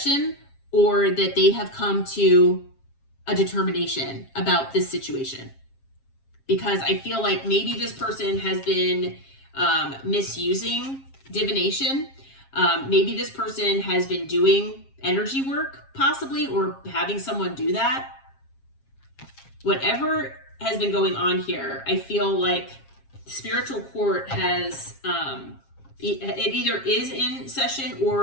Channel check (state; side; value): late; right; 7.4 ms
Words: or that they have come to a determination about this situation. Because I feel like maybe this person has been misusing divination. Maybe this person has been doing energy work, possibly, or having someone do that. Whatever has been going on here, I feel like spiritual court has, it either is in session